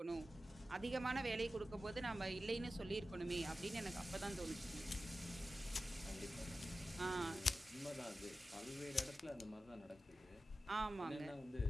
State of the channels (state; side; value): normal; both; correlation 0.94